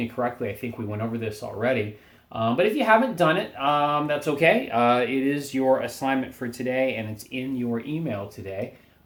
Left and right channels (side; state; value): both; identical; correlation 1.00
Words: correctly, I think we went over this already. But if you haven't done it, that's okay. It is your assignment for today, and it's in your email today.